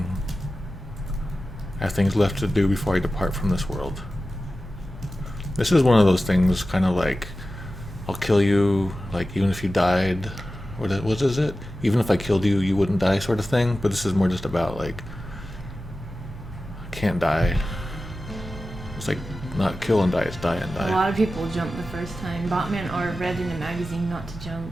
I have things left to do before I depart from this world. This is one of those things, kind of I'll kill you, even if you died. What is it? Even if I killed you, you wouldn't die, sort of thing. But this is more just about I can't die. It's not kill and die, it's die and die. A lot of people jumped the first time. Botman or read in a magazine not to jump.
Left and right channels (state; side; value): normal; both; correlation 0.94